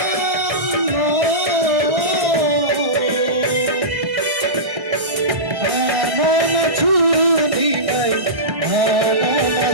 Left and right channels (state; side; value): late; left; 1.6 ms